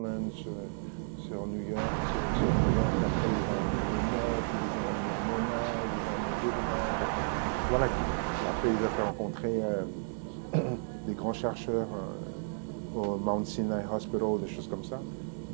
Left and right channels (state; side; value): silent; left; digital silence